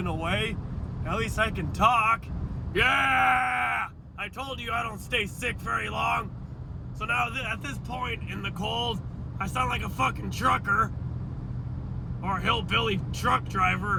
a way. At least I can talk. Yeah! I told you I don't stay sick very long. So now at this point in the cold, I sound like a fucking trucker. Or a hillbilly truck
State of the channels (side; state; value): both; identical; correlation 1.00